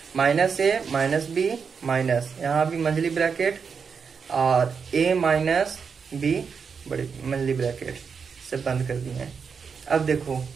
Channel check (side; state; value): left; quieter; 6.0 dB